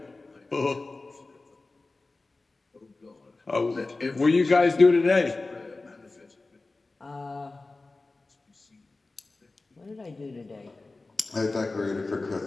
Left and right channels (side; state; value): right; quieter; 3.4 dB